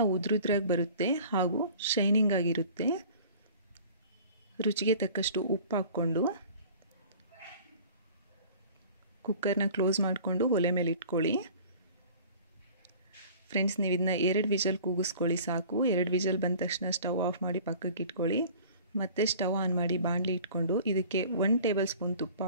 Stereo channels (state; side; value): inverted; both; correlation -0.46